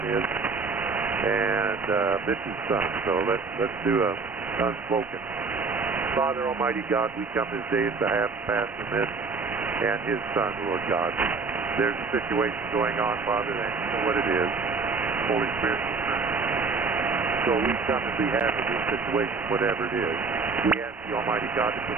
is, and Mitch's son. So let's do a unspoken. Father Almighty God, we come this day on behalf of Pastor Mitch and his son, Lord God. There's a situation going on, Father, and you know what it is. Holy Spirit. So we come on behalf of this situation, whatever it is. We ask the Almighty God to put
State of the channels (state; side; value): quieter; left; 4.4 dB